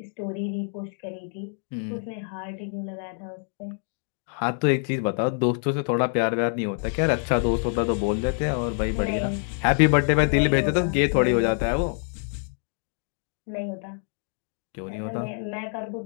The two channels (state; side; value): silent; right; 57 dB below the other